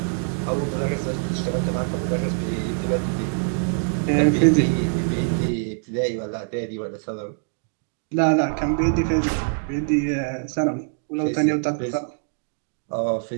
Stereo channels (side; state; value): left; silent; 63 dB below the other